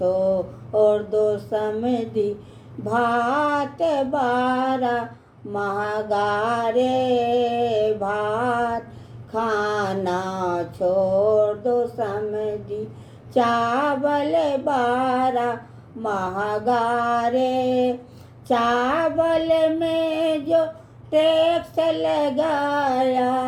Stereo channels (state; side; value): identical; both; correlation 1.00